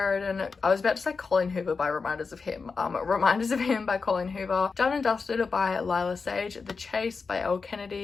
I was about to say Colleen Hoover by Reminders of Him. Reminders of Him by Colleen Hoover, Done and Dusted by Lila Sage, The Chase by Elle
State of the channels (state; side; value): quieter; right; 4.8 dB